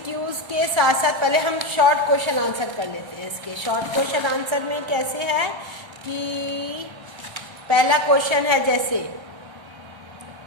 के साथ साथ पहले हम शॉर्ट क्वेश्चन आंसर कर लेते हैं। इसके शॉर्ट क्वेश्चन आंसर में कैसे है कि पहला क्वेश्चन है, जैसे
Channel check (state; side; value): late; left; 1.3 ms